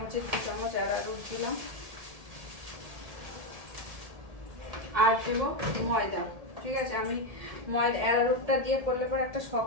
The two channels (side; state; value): left; late; 1.8 ms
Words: 2 চামচ অ্যারারুট দিলাম। আর দেবো ময়দা, ঠিক আছে। আমি ময়দা অ্যারারুটটা দিয়ে করলে পরে একটা